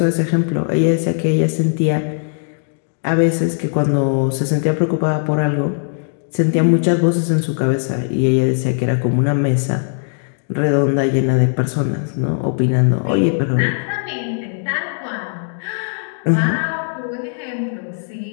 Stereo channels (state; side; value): silent; right; 67 dB below the other